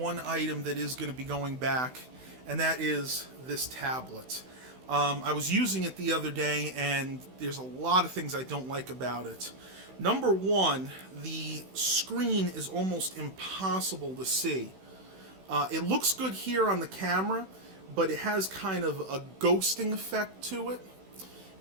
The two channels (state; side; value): late; left; 16 ms